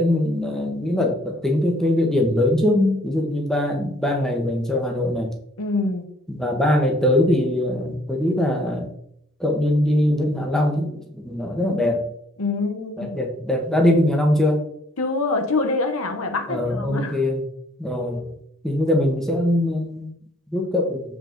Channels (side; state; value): both; normal; correlation 0.62